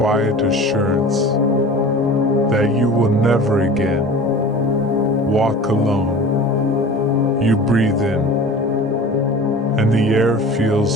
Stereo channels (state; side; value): normal; both; correlation 0.38